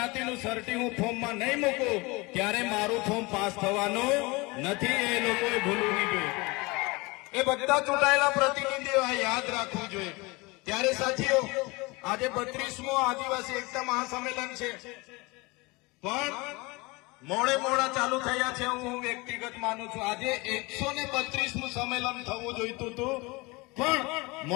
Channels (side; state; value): right; quieter; 24.9 dB